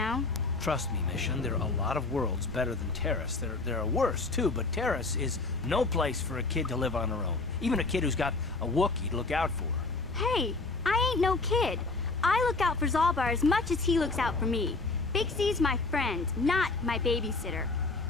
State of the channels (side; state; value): right; quieter; 3.6 dB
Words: Trust me, Mission, there are a lot of worlds better than Terrace. There are worse, too, but Terrace is no place for a kid to live on her own. Even a kid who's got a Wookiee to look out for. Hey, I ain't no kid. I look out for Zalbar as much as he looks out for me. Big Z's my friend, not my babysitter.